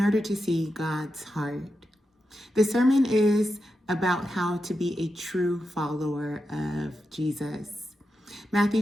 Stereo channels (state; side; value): normal; both; correlation 0.88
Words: order to see God's heart. The sermon is about how to be a true follower of Jesus. Matthew